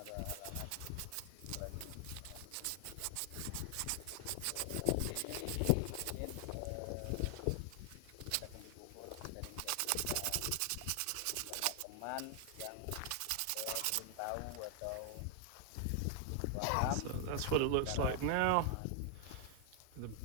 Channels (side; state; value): both; different; correlation 0.00